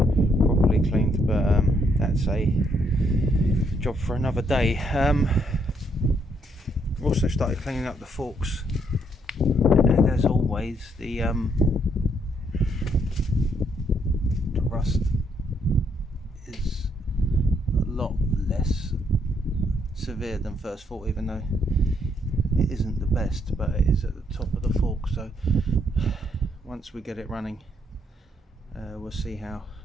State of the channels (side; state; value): both; normal; correlation 0.72